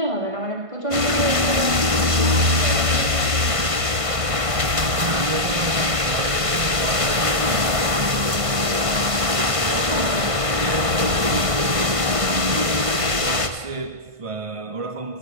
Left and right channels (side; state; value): left; late; 1.5 ms